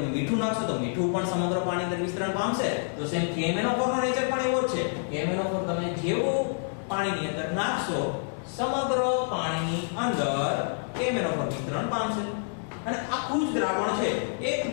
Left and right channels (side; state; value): right; silent; digital silence